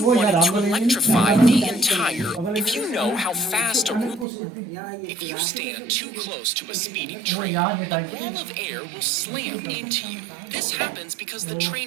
wanted to electrify the entire... If you know how fast If you stand too close to a speeding train, a wall of air will slam into you. This happens because the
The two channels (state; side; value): drops out; left; at 4.2 s